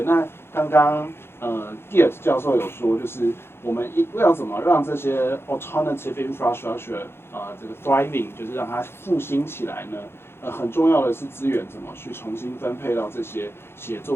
那刚刚Geert 教授有说，就是我们要怎么让这些 alternative infrastructure 这个 thriving， 就是让它复兴起来呢？很重要的是资源怎么去重新分配到这些写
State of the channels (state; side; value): late; right; 0.11 ms